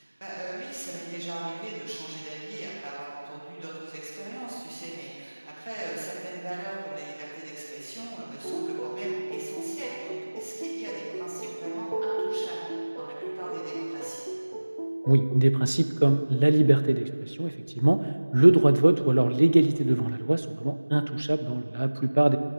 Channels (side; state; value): both; inverted; correlation -1.00